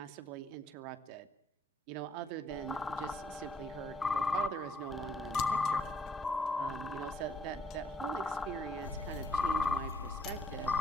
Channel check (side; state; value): both; normal; correlation 0.68